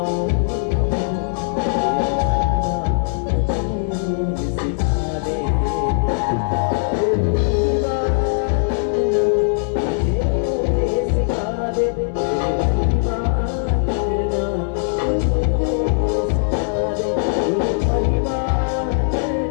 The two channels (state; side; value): silent; right; digital silence